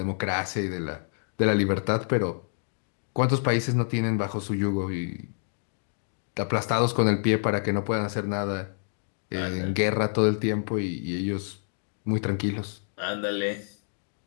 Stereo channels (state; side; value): silent; right; digital silence